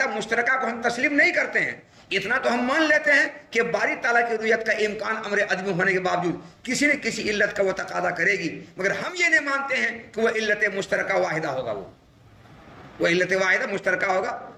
مشترکہ کو ہم تسلیم نہیں کرتے ہیں. اتنا تو ہم مان لیتے ہیں کہ باری تعالیٰ کی رویت کا امکان امر عدمی ہونے کے باوجود کسی نہ کسی علت کا وہ تقاضا کرے گی، مگر ہم یہ نہیں مانتے ہیں کہ وہ علت مشترکہ واحدہ ہوگا. وہ علت واحدہ مشترکہ ہوگا،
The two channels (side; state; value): both; identical; correlation 1.00